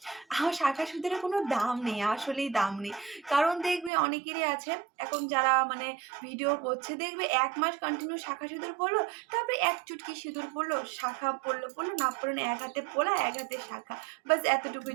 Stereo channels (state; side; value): drops out; left; at 3.9 s